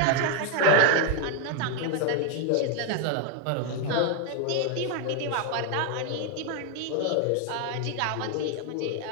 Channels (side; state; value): both; different; correlation 0.01